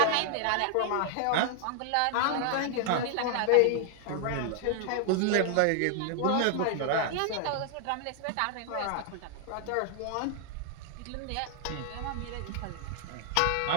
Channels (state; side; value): different; both; correlation 0.00